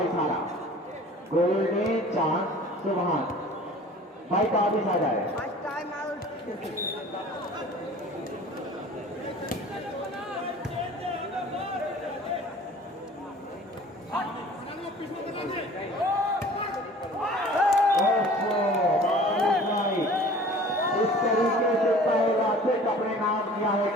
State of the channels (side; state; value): both; normal; correlation 0.46